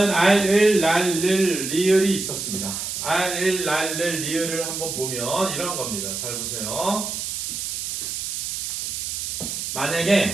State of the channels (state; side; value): noise; right; hiss, 4 dB below the sound